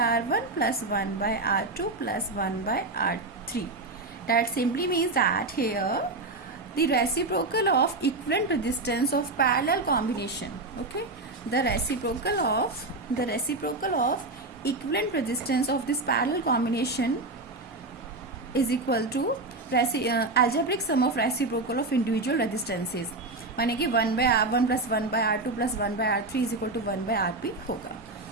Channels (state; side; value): quieter; left; 3.0 dB